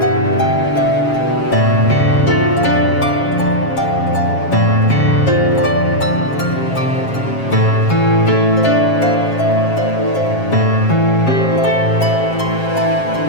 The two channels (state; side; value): late; right; 7.4 ms